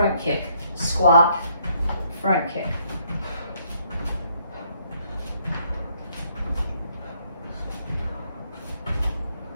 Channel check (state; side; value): inverted; both; correlation -0.69